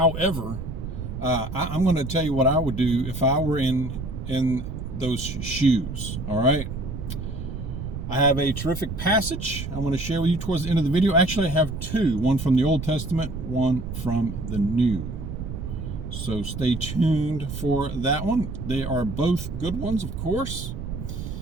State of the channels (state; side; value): noise; right; rumble, 7 dB below the sound